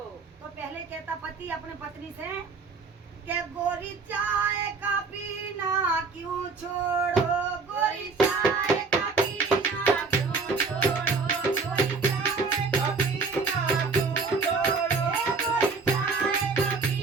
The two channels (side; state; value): left; quieter; 4.5 dB